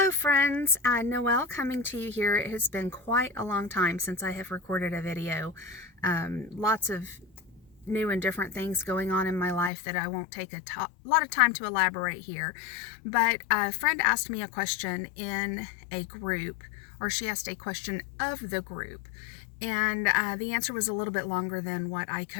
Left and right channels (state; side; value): drops out; right; at 9.7 s